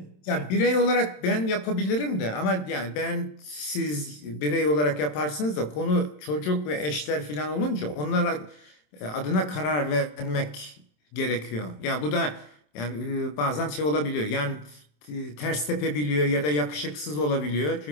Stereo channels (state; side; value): late; right; 27 ms